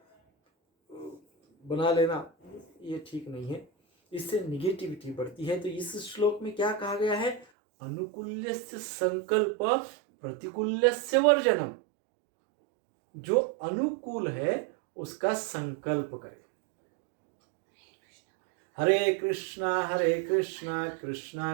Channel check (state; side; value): drops out; left; at 7.5 s